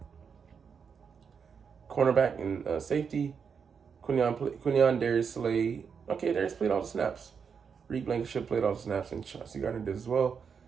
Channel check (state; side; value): quieter; left; 6.4 dB